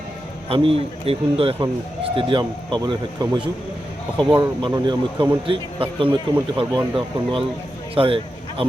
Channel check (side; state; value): both; normal; correlation 0.89